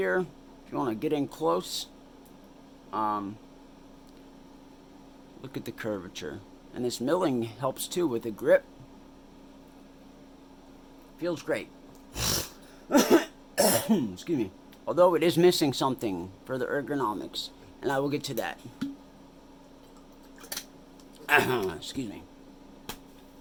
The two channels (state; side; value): identical; both; correlation 1.00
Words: if you want to get in close. Look at the curvature. And this milling helps too with the grip. Feels great. Excuse me. Although it is missing something for the ergonomics. And I will get to that. Excuse me.